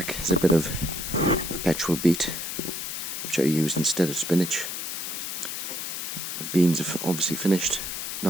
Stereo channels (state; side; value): noise; left; hiss, 5 dB below the sound